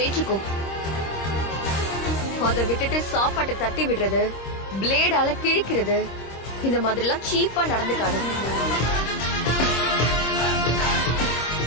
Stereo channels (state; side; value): late; right; 26 ms